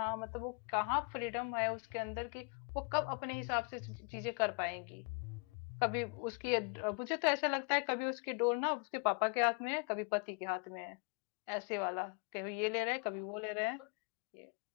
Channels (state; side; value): quieter; right; 36.2 dB